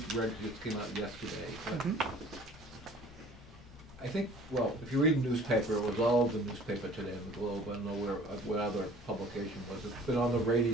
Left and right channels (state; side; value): normal; both; correlation 0.50